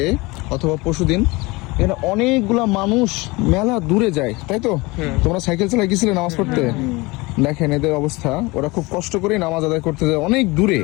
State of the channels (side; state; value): right; quieter; 23.7 dB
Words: অথবা পরশুদিন। এখানে অনেকগুলা মানুষ মেলা দূরে যায়, তাই তো? তোমরা সাইকেল চালায় গেছিলে নামাজ পড়তে? দেখেন এদের অবস্থা, ওরা খুব কষ্ট করে নামাজ আদায় করতে যায় অনেক দূরে।